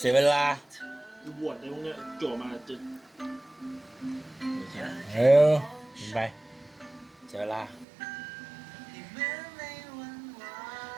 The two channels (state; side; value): drops out; left; at 7.9 s